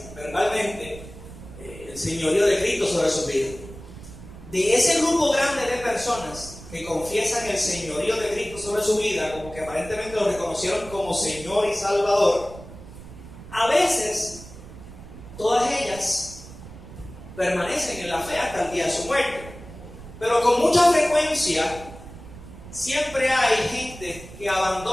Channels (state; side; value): noise; right; rumble, 16 dB below the sound